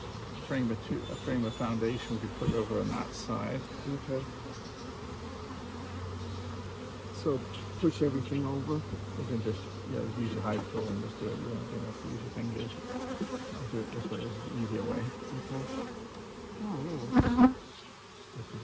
frame of foundation we could put over on that side. Okay. So push everything over. You can just use your hive tool and just do it. You don't have to use your fingers. I'll do it this way, it's the easier way. Okay. Oh, really?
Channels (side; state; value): both; identical; correlation 1.00